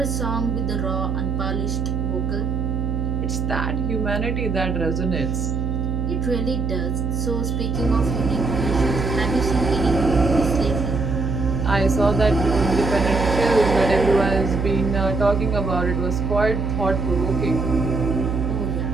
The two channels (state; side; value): noise; right; hum, 1 dB below the sound